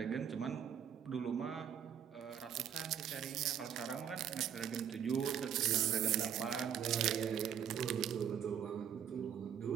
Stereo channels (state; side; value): quieter; left; 8.8 dB